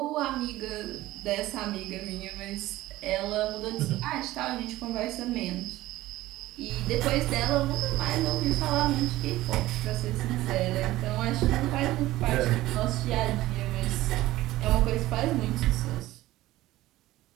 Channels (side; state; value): left; quieter; 16.5 dB